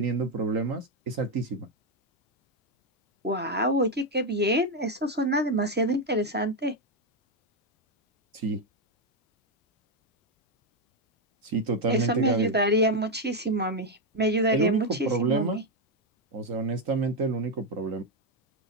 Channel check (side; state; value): both; normal; correlation 0.04